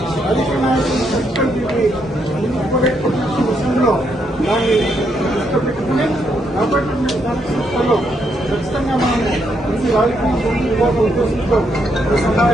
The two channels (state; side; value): normal; both; correlation 0.77